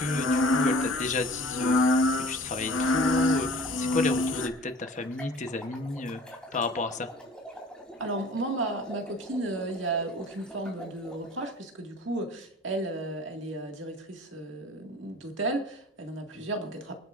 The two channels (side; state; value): both; normal; correlation 0.46